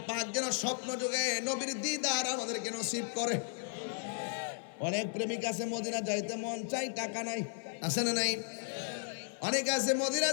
পাক যেন স্বপ্ন যুগে নবীর দিদার আমাদেরকে নসিব করে। অনেক প্রেমিক আছে মদিনা যাইতে মন চাই, টাকা নাই, আছে না নাই? অনেক আছে মদিনা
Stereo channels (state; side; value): silent; right; 54 dB below the other